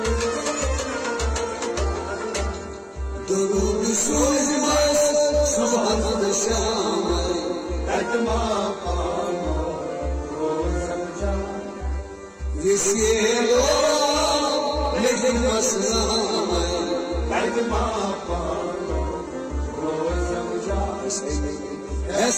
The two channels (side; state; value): both; identical; correlation 1.00